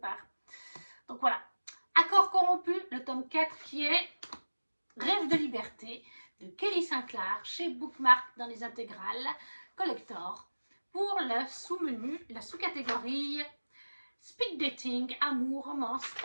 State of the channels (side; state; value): both; inverted; correlation -1.00